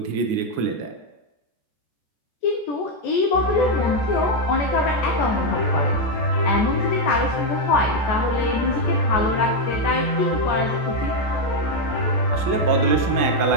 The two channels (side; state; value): right; late; 14 ms